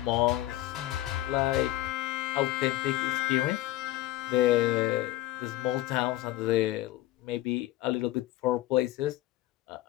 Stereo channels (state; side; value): quieter; right; 15.7 dB